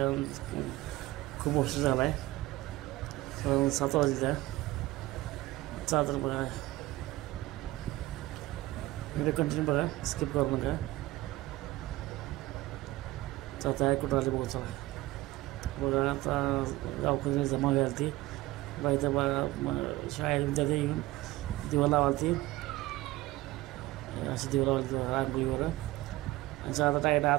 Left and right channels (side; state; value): left; quieter; 18.2 dB